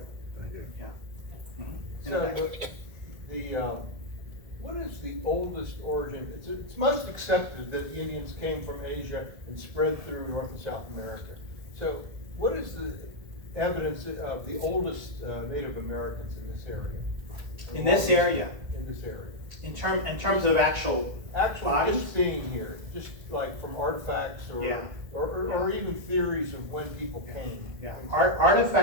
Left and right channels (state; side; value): late; left; 1.8 ms